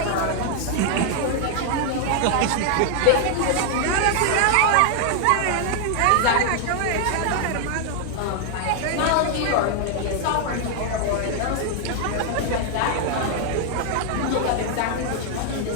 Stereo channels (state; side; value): different; both; correlation 0.00